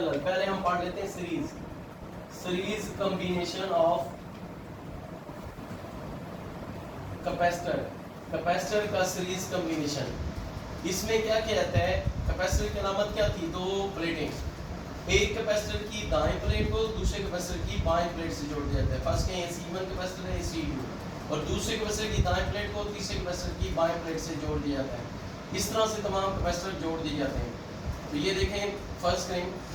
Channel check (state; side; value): identical; both; correlation 1.00